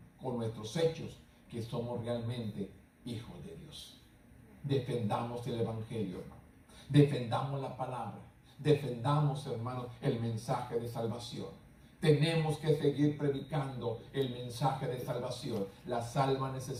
con nuestros hechos, que somos realmente hijos de Dios. Defendamos el evangelio, hermano. Defendamos la palabra. Defendamos, hermano, el mensaje de salvación. Tenemos que seguir predicando el mensaje de salvación. Las almas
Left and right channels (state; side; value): identical; both; correlation 1.00